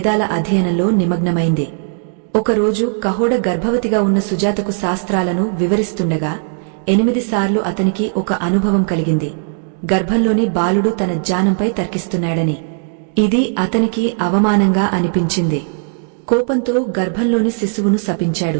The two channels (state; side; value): silent; left; digital silence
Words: అధ్యయనంలో నిమగ్నమైంది. ఒకరోజు కహోడ గర్భవతిగా ఉన్న సుజాతకు శాస్త్రాలను వివరిస్తుండగా 8 సార్లు అతనికి ఒక అనుభవం కలిగింది, గర్భంలోని బాలుడు తన జ్ఞానంపై తర్కిస్తున్నాడని. ఇది అతనికి అవమానంగా అనిపించింది. కోపంతో గర్భంలోని శిశువును